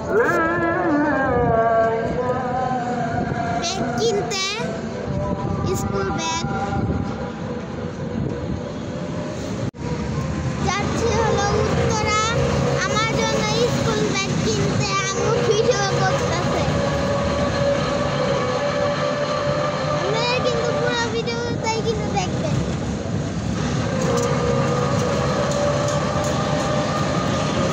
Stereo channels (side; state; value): both; identical; correlation 1.00